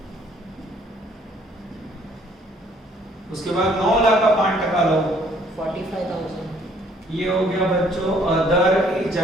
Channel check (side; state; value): both; normal; correlation 0.62